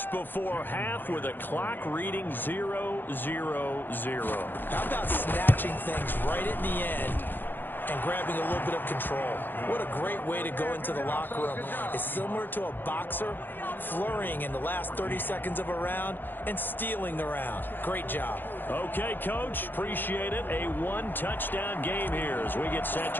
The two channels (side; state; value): right; late; 0.093 ms